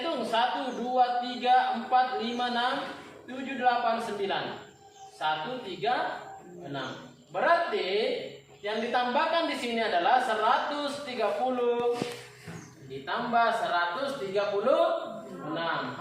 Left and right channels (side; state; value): both; identical; correlation 1.00